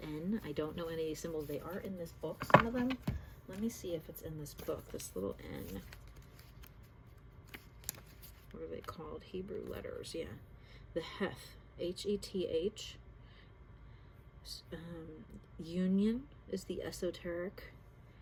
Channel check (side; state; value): both; identical; correlation 1.00